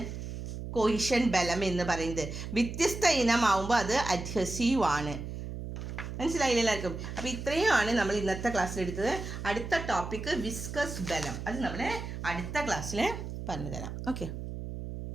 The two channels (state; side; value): noise; right; hum, 7 dB below the sound